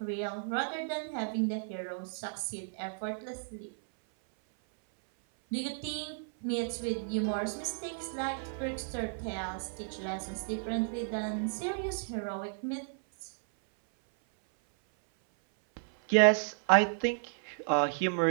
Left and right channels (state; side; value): silent; left; 56 dB below the other